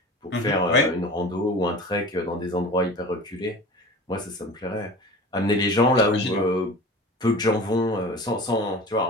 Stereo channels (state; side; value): normal; both; correlation 0.37